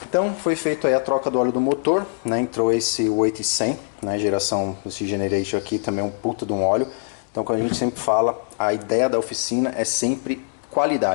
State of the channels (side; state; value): right; silent; digital silence